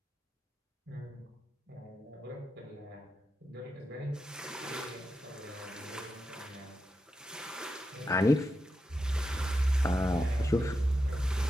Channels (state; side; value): normal; both; correlation 0.88